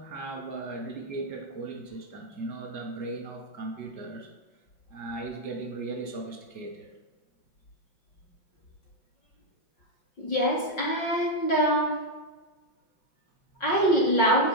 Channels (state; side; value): late; right; 5.6 ms